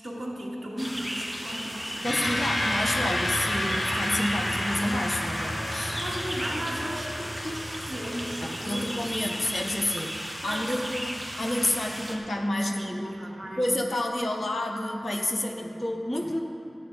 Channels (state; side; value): normal; both; correlation 0.96